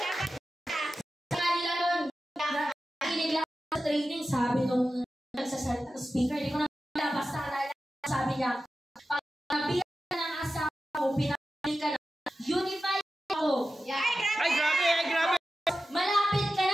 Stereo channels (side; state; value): both; normal; correlation 0.93